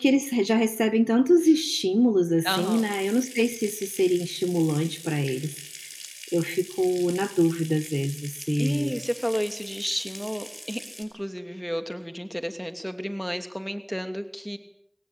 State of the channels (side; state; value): both; identical; correlation 1.00